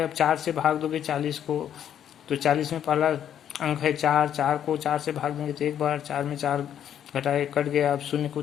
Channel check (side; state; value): right; quieter; 9.8 dB